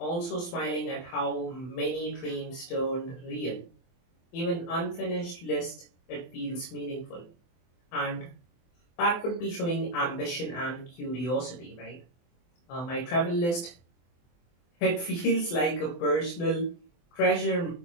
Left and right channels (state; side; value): late; right; 23 ms